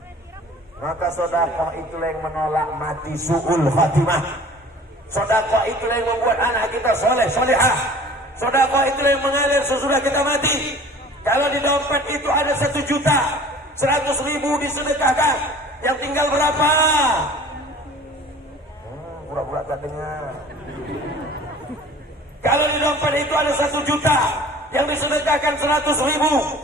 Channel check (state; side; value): normal; both; correlation 0.46